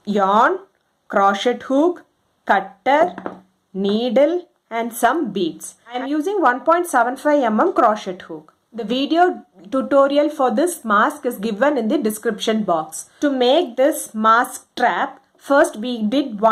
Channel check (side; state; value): both; identical; correlation 1.00